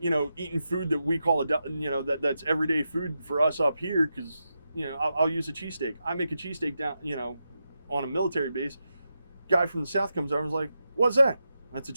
food that we call that's everyday food for us up here, because, you know, I'll use a cheesesteak. I make a cheesesteak down, you know, on a military base. Guy from the south comes over and is like, "What's that?" "That's a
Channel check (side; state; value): both; inverted; correlation -0.88